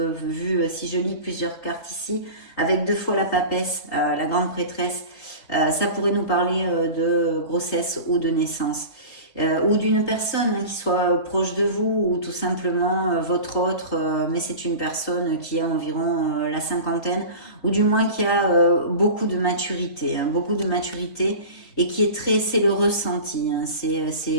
vu, si je lis plusieurs cartes ici, avec 2 fois la papesse, la grande prêtresse, ça pourrait nous parler de grossesse ou de naissance. Ou d'une personne qui soit proche de vous, ou tout simplement votre autre, mais c'est une personne qui a environ la cinquantaine, ou du moins qui a beaucoup de maturité, et qui est très, c'est le ressenti, c'est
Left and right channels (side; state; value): right; late; 3.9 ms